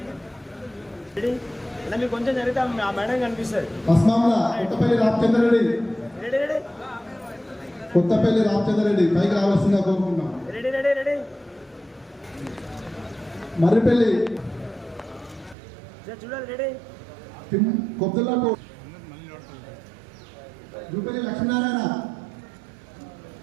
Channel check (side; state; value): left; drops out; at 15.6 s